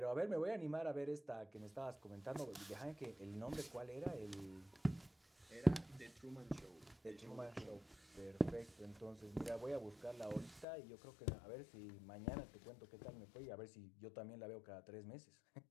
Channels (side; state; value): right; drops out; at 10.7 s